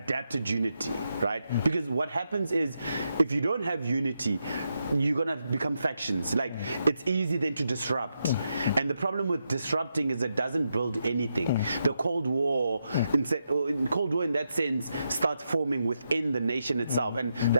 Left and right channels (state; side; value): inverted; both; correlation -0.84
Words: unity, right? Because what happens is, if you don't have unity, you're gonna become factions. Like, it's easy then to disrupt, and the problem with disrupting is it doesn't build anything. The Cold War, in that sense, starts forming within the nation itself, and